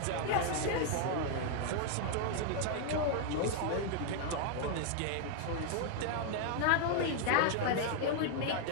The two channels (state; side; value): different; both; correlation 0.00